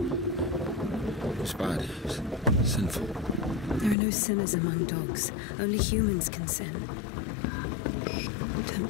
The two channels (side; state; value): right; drops out; at 4.0 s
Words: It's bad. It's sinful. There are no sinners among dogs. Only humans can sin.